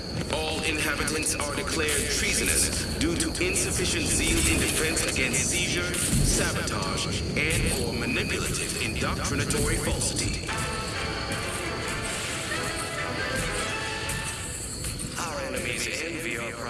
All inhabitants are declared treasonous due to insufficient zeal in defense against seizure, sabotage, and/or manipulative indoctrinatory falsity. Our enemies envy our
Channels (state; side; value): identical; both; correlation 1.00